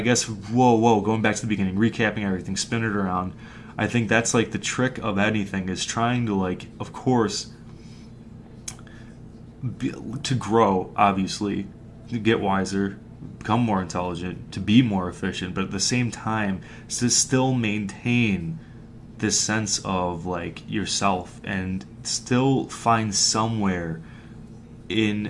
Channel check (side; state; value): both; identical; correlation 1.00